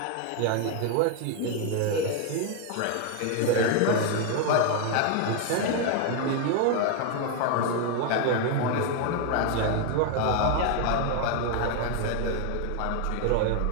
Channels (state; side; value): different; both; correlation 0.01